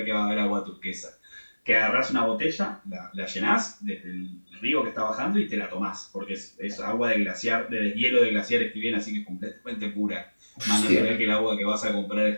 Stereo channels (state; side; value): inverted; both; correlation -1.00